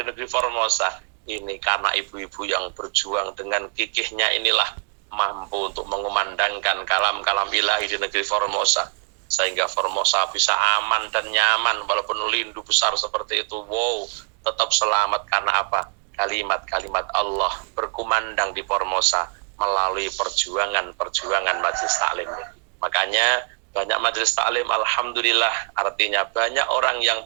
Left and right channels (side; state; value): left; quieter; 38.2 dB